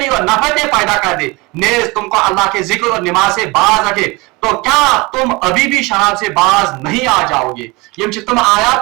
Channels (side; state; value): left; quieter; 24.8 dB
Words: اور نفرتیں پیدا کر دے نیز تم کو اللہ کے ذکر اور نماز سے باز رکھے تو کیا تم ابھی بھی شراب سے باز نہیں آ جاؤ گے یہ تم